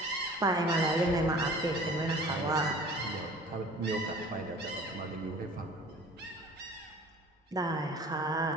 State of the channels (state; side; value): normal; both; correlation 0.46